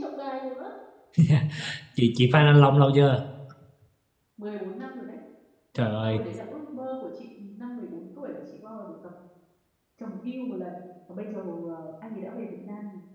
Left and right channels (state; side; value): identical; both; correlation 1.00